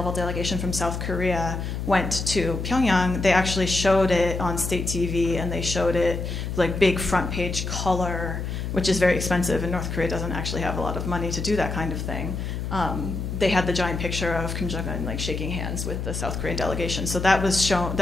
delegation from South Korea went to Pyongyang. They actually showed it on state TV, and they showed it like big front page color, which is very expensive, and North Korea doesn't actually have a lot of money to do that kind of thing. They had the giant picture of Kim Jong-un like shaking hands with the South Korean delegation. So that was shown,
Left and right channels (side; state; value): left; noise; hum, 4 dB below the sound